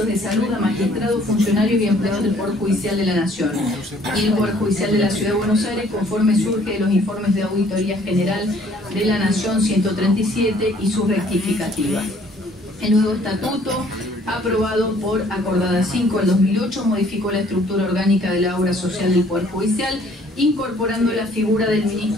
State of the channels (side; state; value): both; normal; correlation 0.59